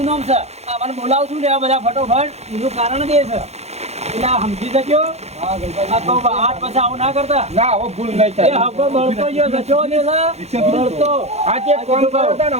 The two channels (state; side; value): late; left; 0.31 ms